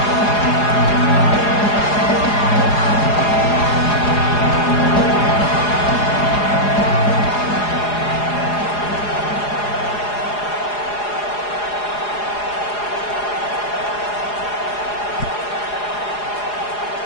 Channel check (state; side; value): late; right; 4.8 ms